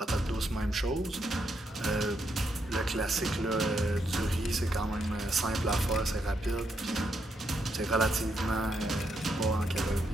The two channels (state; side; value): normal; both; correlation 0.79